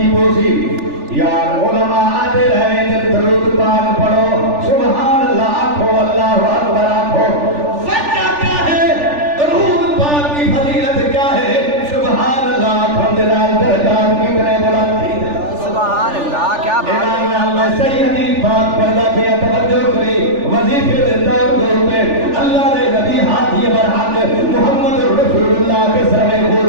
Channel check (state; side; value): late; left; 3.4 ms